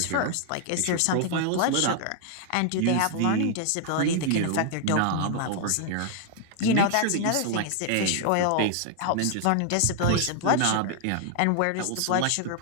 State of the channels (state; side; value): different; both; correlation 0.00